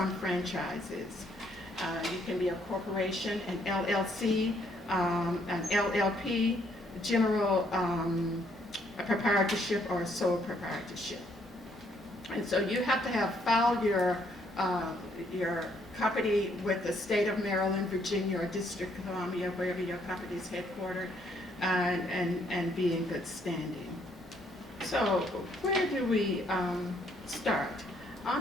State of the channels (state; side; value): normal; both; correlation 0.69